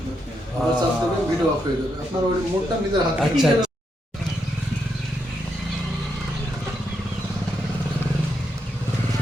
আবার চাপ দেবেন ভিডিও অফ হয়ে যাবে আপনার ওই মোডটা নিজের হাতে আচ্ছা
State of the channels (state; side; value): normal; both; correlation 0.81